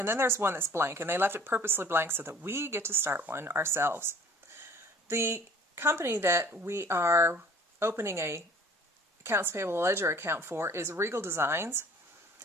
then there's one that's blank, and they left it purposely blank so that we get to start one ourselves. The company that we are opening a accounts payable ledger account for is Regal Designs.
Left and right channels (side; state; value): both; normal; correlation 0.50